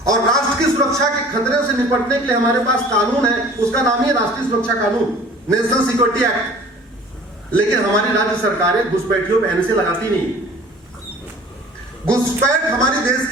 और राष्ट्र की सुरक्षा के खतरे से निपटने के लिए हमारे पास कानून है, उसका नाम ही राष्ट्रीय सुरक्षा कानून, नेशनल सिक्योरिटी एक्ट। लेकिन हमारी राज्य सरकारें घुसपैठियों पर NSA लगाती नहीं। घुसपैठ हमारे देश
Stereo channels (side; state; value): both; normal; correlation 0.47